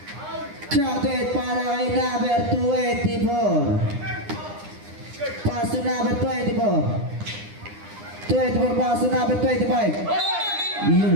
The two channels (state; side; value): late; left; 9.8 ms